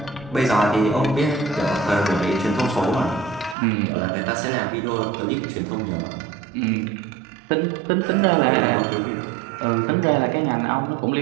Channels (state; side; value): drops out; left; at 3.6 s